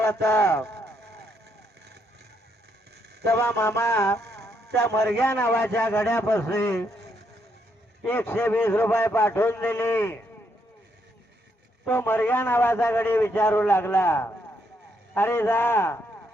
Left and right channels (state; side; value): normal; both; correlation 0.75